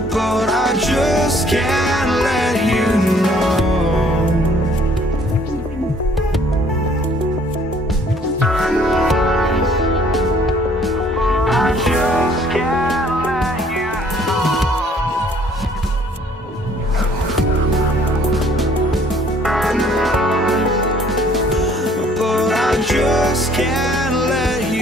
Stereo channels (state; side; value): normal; both; correlation 0.59